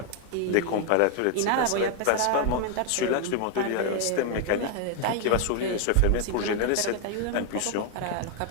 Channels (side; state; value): both; different; correlation 0.00